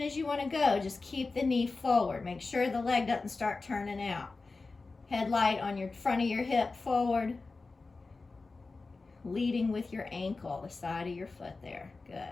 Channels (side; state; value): right; quieter; 3.8 dB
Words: as you want to go, just keep the knee forward. Make sure the leg doesn't start turning out. Headlight on your front of your hip forward. Leading with your ankle, the side of your foot there.